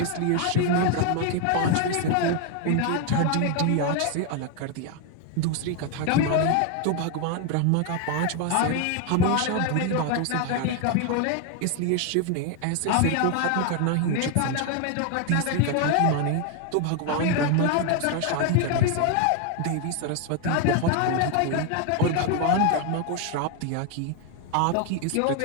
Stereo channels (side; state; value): both; different; correlation 0.01